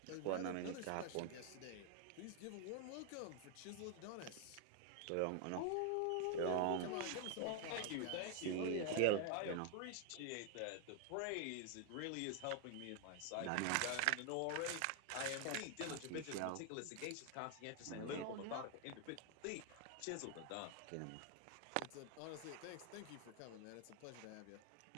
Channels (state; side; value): different; both; correlation 0.00